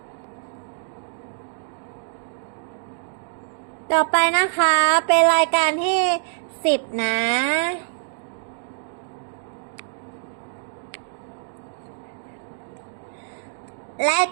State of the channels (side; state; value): left; silent; digital silence